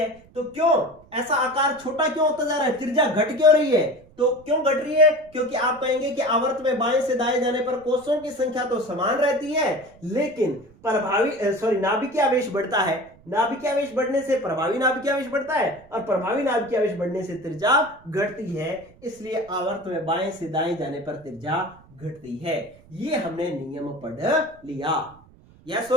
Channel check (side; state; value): right; noise; rumble, 26 dB below the sound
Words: तो क्यों ऐसा आकार छोटा क्यों होता जा रहा है, त्रिज्या घट क्यों रही है, तो क्यों घट रही है, क्योंकि आप कहेंगे कि आवर्त में बाएं से दाएं जाने पर कोषों की संख्या तो समान रहती है, लेकिन नाभिकीय आवेश बढ़ता है। नाभिकीय आवेश बढ़ने से प्रभावी नाभिकीय आवेश बढ़ता है, और प्रभावी नाभिकीय आवेश बढ़ने से त्रिज्या घटती है। इसलिए आवर्त में बाएं से दाएं जाने पर त्रिज्या घटती है। ये हमने नियम पढ़ लिया, यस